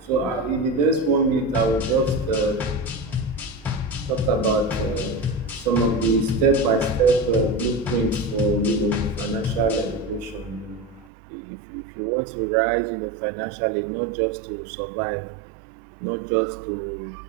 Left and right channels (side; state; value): left; drops out; at 11.1 s